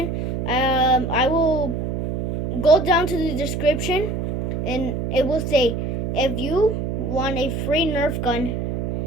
I will go down to the description and it will say, if you want a free nerf gun,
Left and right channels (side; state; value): right; noise; hum, 2 dB below the sound